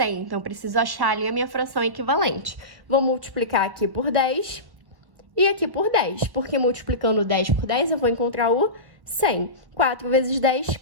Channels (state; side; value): late; left; 1.1 ms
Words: Então, preciso achar ali a minha fração equivalente. Vou multiplicar aqui por 10 e aqui por 10. Porque multiplicando 10 por 10, eu vou encontrar o 100. 4 vezes 10,